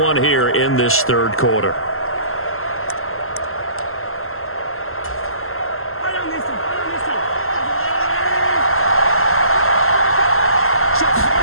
here in this 3rd quarter.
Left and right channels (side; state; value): right; late; 0.62 ms